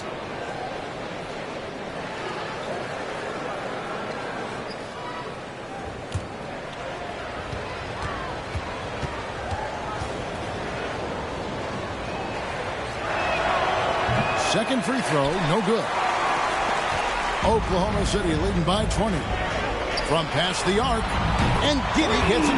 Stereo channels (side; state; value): both; identical; correlation 1.00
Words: Second free throw, no good. Oklahoma City leading by 20. From past the arc, and Giddey gets